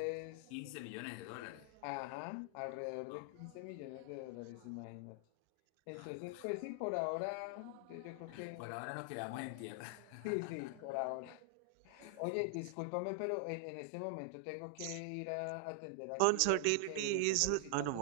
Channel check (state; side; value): different; both; correlation 0.00